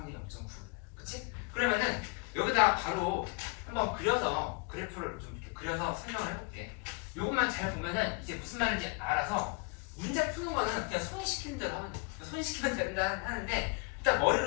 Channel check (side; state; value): right; quieter; 31.1 dB